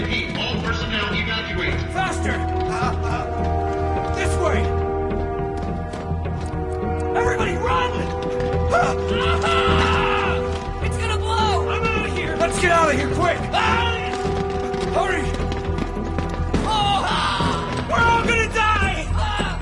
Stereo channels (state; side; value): identical; both; correlation 1.00